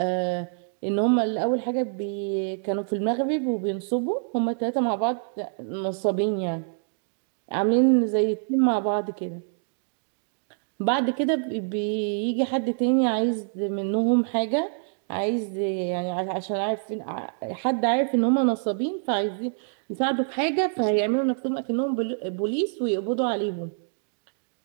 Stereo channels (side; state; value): left; silent; digital silence